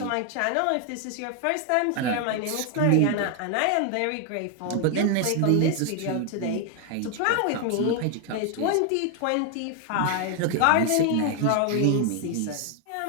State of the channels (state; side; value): different; both; correlation 0.01